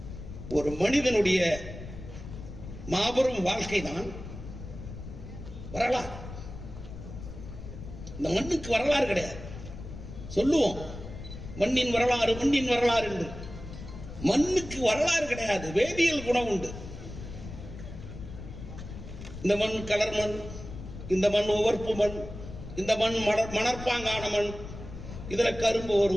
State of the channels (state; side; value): noise; left; rumble, 11 dB below the sound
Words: ஒரு மனிதனுடைய மாபெரும் வாழ்க்கை தான் வரலாறு. இந்த மண்ணுக்கு வரலாறு கிடையாது. சொல்லுவோம் மண்ணின் வரலாறு, மண்ணின் வரலாறு என்று. மண்ணுக்கு வரலாறு கிடையாது, வேதியியல் குணம் உண்டு. இந்த மண் கலர் மண், இந்த மண் உவர்ப்பு மண், இந்த மண் மணற்பாங்கான மண், இதுல கரும்பு